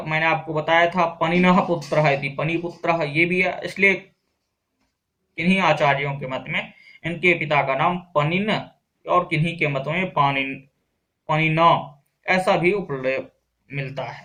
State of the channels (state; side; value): identical; both; correlation 1.00